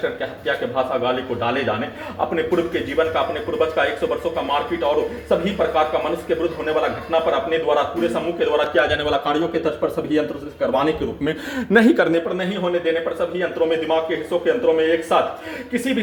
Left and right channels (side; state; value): both; identical; correlation 1.00